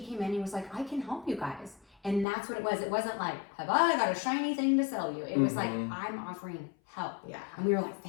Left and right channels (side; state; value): right; drops out; at 2.2 s